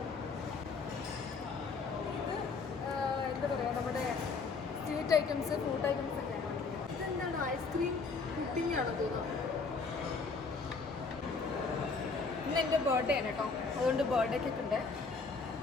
ഇത് എന്താ പറയുക, നമ്മുടെ സ്വീറ്റ് ഐറ്റംസ്, ഫ്രൂട്ട് ഐറ്റംസ് ഒക്കെയാണ്. ഇതെന്താണ്, ഐസ്ക്രീം പുഡിംഗ് ആണെന്ന് തോന്നുന്നു. ഇന്ന് എൻ്റെ ബർത്ത്ഡേ ആണ് കേട്ടോ, അതുകൊണ്ട് ബർത്ത്ഡേ കേക്ക് ഉണ്ട്.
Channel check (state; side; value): quieter; right; 4.5 dB